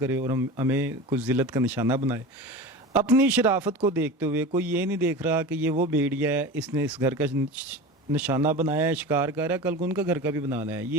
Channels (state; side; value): normal; both; correlation 0.31